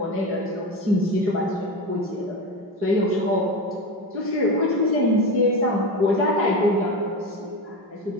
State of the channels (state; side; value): late; left; 4.9 ms